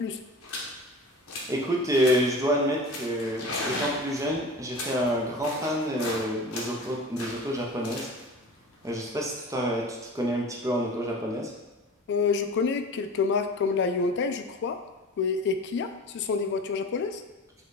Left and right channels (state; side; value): normal; both; correlation 0.36